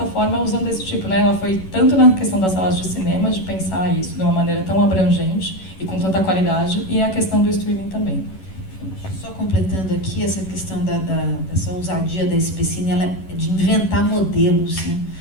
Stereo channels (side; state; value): right; late; 11 ms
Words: usando esse tipo, né? Ela foi tanto na questão das salas de cinema, de pensar isso de uma maneira tão abrangente e com tanta qualidade, e a questão do streaming também. Só completando aqui essa questão dessa ousadia da SPCine, ela é de inventar modelos, né?